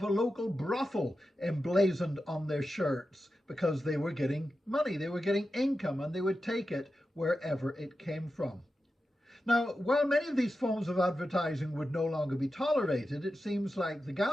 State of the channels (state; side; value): normal; both; correlation 0.91